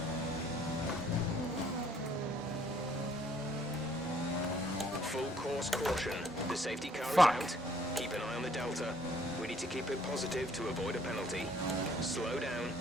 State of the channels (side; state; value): both; normal; correlation 0.62